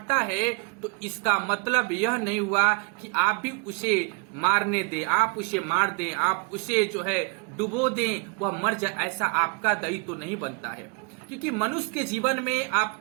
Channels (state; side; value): quieter; left; 33.4 dB